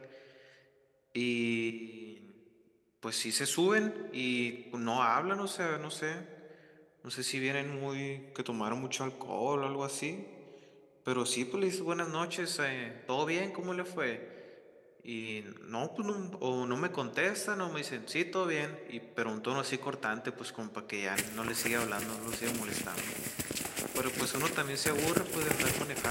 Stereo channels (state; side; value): identical; both; correlation 1.00